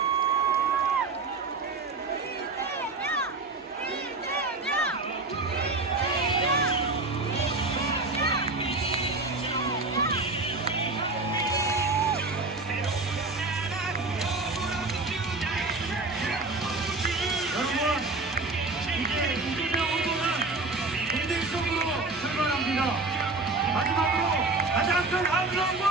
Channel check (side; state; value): left; quieter; 3.5 dB